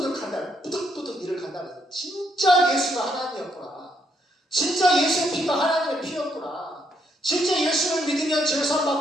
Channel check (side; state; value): both; normal; correlation 0.74